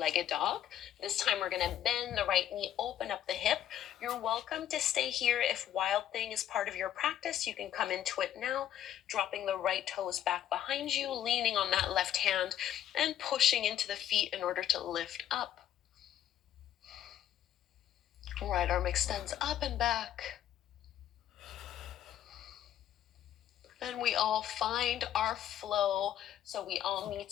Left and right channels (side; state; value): right; quieter; 11.1 dB